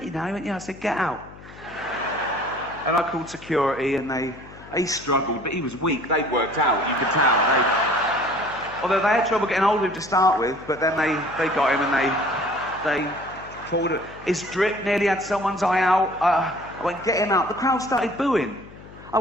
now. He went, yeah. I said, get out. And I called security, and he struggled, but he was weak. They'd worked out, you could tell. Although they had trouble getting hold of him to start with, but then they got him, and they pulled it. His drip nearly had someone's eye out. I went, get him out. The crowd started booing. I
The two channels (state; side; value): noise; left; hum, 19 dB below the sound